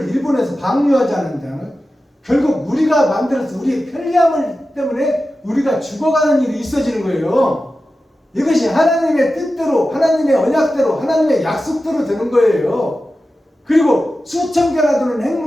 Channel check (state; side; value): normal; both; correlation 0.93